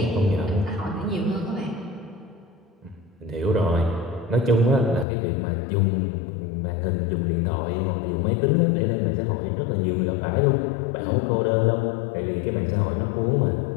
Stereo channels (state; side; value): drops out; right; at 5.1 s